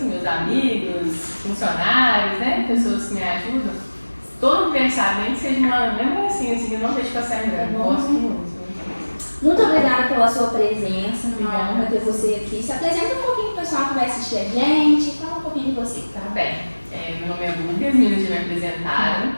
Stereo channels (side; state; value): both; inverted; correlation -1.00